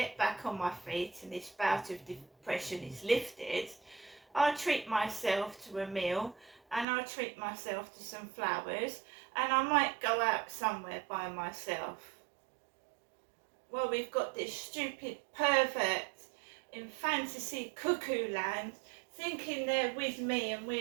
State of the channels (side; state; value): left; drops out; at 6.9 s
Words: back on my feet and this bout of depression is lifted, I'll treat myself to a meal and I'll treat myself to some flowers and I might go out somewhere by myself. Well, we've got this stupid pervert in fantasy cuckoo land thinking they're with me and